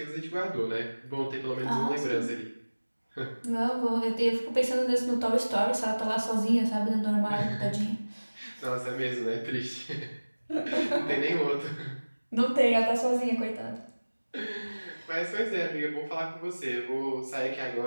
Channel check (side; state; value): both; inverted; correlation -1.00